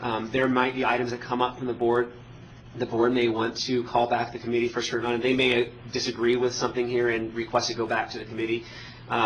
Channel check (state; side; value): identical; both; correlation 1.00